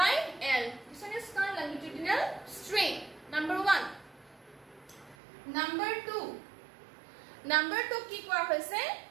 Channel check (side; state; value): left; drops out; at 5.2 s